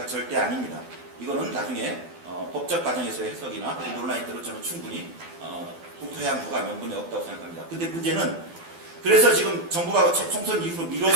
절대 아닙니다. 이거는 나중에 법적 과정에서의 해석이나 논란이 들어 저는 충분히 국토해양부가 명분이 없다고 생각합니다. 근데 문제는 그래서 지금 정부가 총선 이후로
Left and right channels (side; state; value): left; late; 12 ms